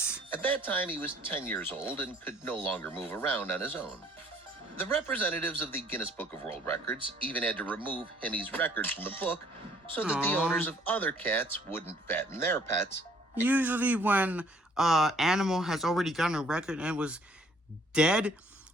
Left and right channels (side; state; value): both; normal; correlation 0.60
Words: At that time, he was 10 years old and could no longer move around on his own. The representatives of the Guinness Book of World Records even had to remove Hemi's record from the book so that the Aw. owners of other cats wouldn't fatten their pets. Usually when animal has already gotten a record and was dead,